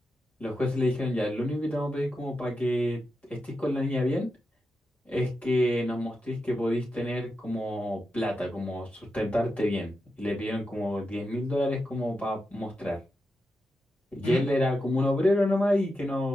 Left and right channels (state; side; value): normal; both; correlation 0.88